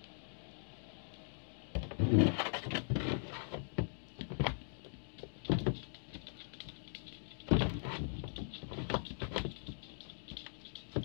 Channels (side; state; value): right; silent; digital silence